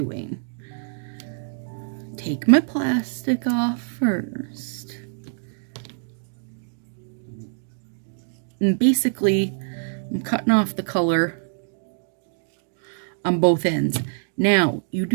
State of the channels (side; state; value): left; silent; digital silence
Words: Take my plastic off first. And basically, I'm cutting off the color on both ends. Now, you